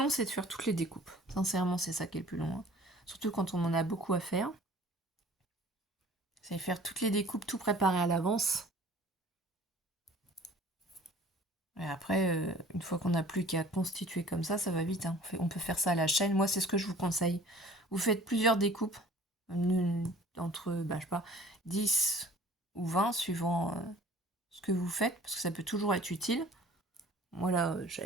c'est de faire toutes les découpes. Sincèrement, c'est ça qui est le plus long. Hein. Surtout quand on en a beaucoup à faire. C'est faire toutes les découpes, tout préparer à l'avance. Et après, une fois qu'on n'a plus qu'à constituer comme ça va vite. Hein. On peut faire ça à la chaîne. Moi, c'est ce que je vous conseille. Vous faites plusieurs découpes, entre, je sais pas, 10 ou 20, suivant ce que vous faites, parce que ça peut toujours être utile. Moi, là,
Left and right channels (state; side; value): normal; both; correlation 0.49